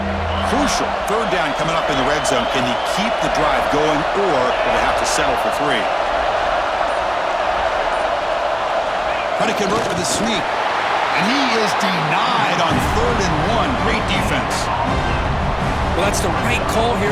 Crucial. 3rd down coming up in the red zone. Can he keep the drive going, or will they have to settle for 3? Trying to convert with a sneak. And he is denied on 3rd and 1. Great defense. Well, that's the right call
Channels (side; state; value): both; identical; correlation 1.00